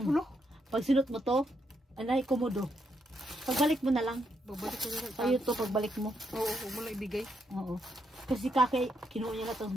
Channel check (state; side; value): normal; both; correlation 0.78